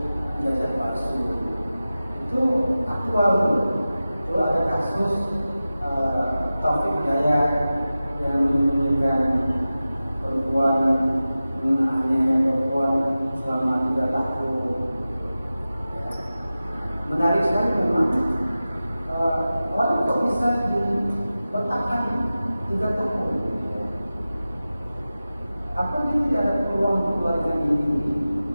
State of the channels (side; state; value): both; inverted; correlation -0.95